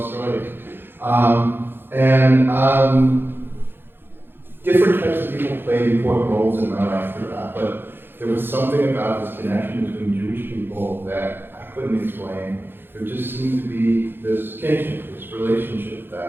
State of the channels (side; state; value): left; late; 0.10 ms